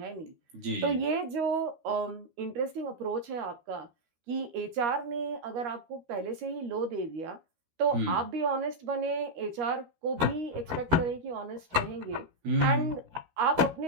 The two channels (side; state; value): left; late; 13 ms